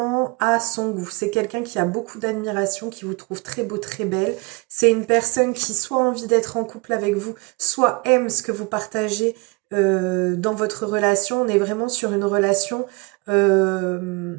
à son goût. C'est quelqu'un qui a beaucoup d'admiration, qui vous trouve très beau, très belle. C'est une personne qui soit a envie d'être en couple avec vous, soit aime ce que vous partagez dans votre relation. On est vraiment sur une relation,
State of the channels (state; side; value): quieter; left; 28.1 dB